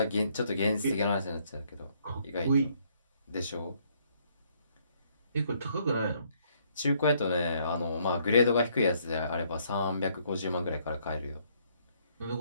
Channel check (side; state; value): both; inverted; correlation -0.68